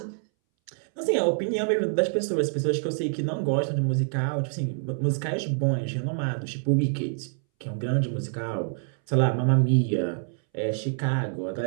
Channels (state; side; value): silent; left; 61 dB below the other